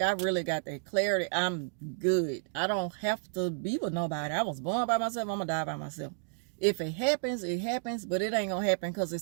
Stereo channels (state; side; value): silent; left; digital silence